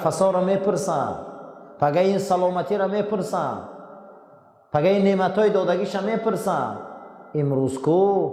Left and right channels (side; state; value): both; identical; correlation 1.00